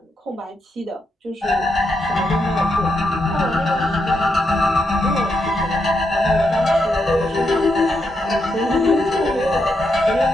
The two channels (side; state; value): both; normal; correlation 0.82